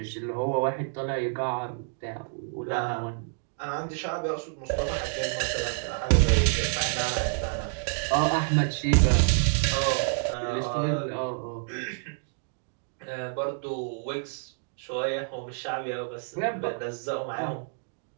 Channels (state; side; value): silent; left; digital silence